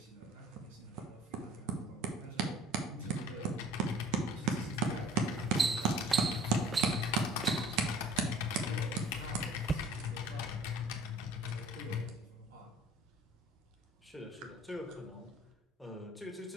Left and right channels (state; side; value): normal; both; correlation 0.49